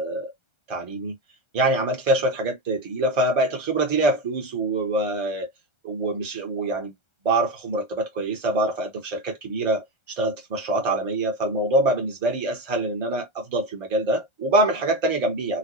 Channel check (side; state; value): right; late; 1.3 ms